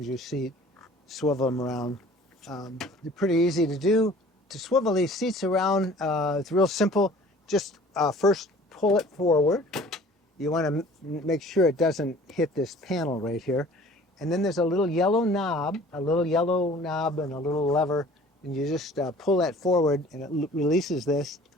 seat, swivel them around. They're pretty easy to do. To swivel these seats around, it's real simple. Just first pull it forward. You want to make sure it doesn't hit this panel right here. And then there's a little yellow knob and a little lever. And you just pull that forward and it releases this.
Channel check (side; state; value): both; normal; correlation 0.49